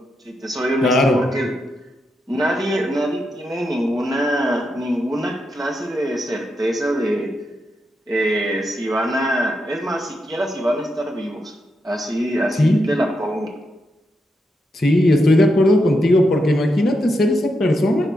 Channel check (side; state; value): both; normal; correlation 0.84